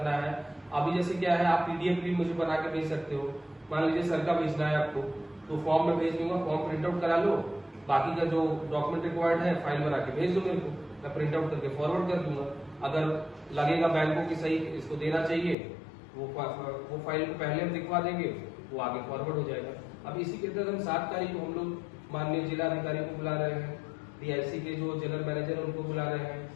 है, अभी जैसे क्या है, आप PDF भी मुझे बना के भेज सकते हो। मान लीजिए सर का भेजना है आपको, तो फॉर्म में भेज दूंगा, फॉर्म प्रिंट आउट करा लो, बाकी का जो डॉक्यूमेंट रिक्वायर्ड है फाइल बना के भेज दो मेरे को, मैं प्रिंट आउट करके फॉरवर्ड कर दूंगा। अगर लगेगा बैंक को कि सही इसको देना चाहिए, वो फाइल को पहले हम दिखवा देंगे, वो आगे फॉरवर्ड हो जाएगा। अब इसी के तहत हम 7 तारीख को हम लोग माननीय जिलाधिकारी को बुला रहे हैं, DIC के जो जनरल मैनेजर उनको बुला रहे हैं,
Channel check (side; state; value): right; drops out; at 15.6 s